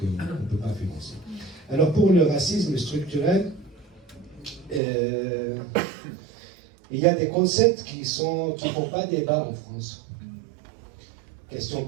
ne peut pas financer. Alors pour le racisme structurel, il y a des concepts qui ne font pas débat en France. Question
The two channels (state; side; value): drops out; left; at 4.8 s